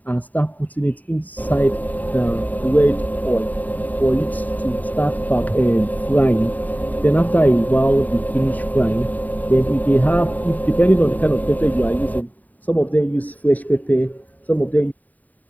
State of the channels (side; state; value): right; late; 0.079 ms